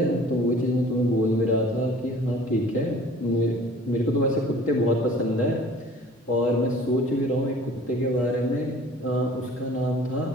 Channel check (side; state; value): both; normal; correlation 0.49